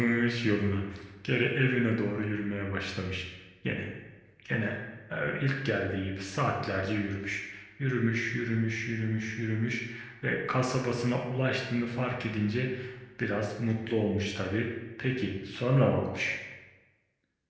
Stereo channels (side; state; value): both; identical; correlation 1.00